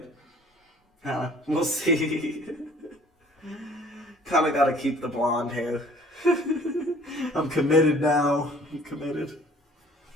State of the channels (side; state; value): both; normal; correlation 0.53